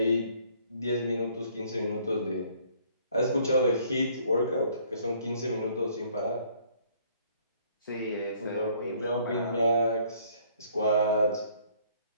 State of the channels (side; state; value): both; inverted; correlation -0.61